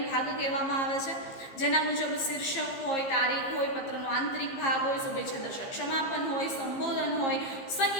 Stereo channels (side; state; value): right; late; 15 ms